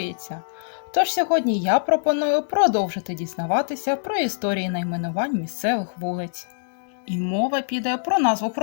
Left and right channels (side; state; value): right; silent; digital silence